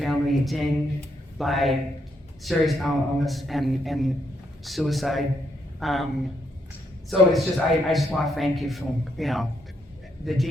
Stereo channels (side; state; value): both; normal; correlation 0.76